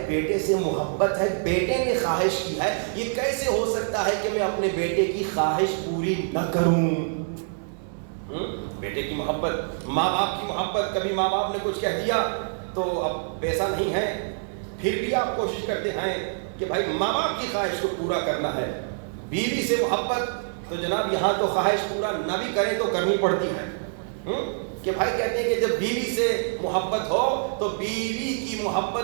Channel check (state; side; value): silent; left; digital silence